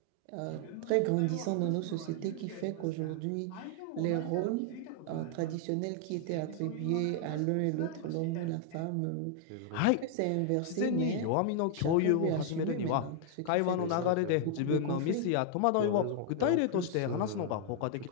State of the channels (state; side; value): different; both; correlation 0.00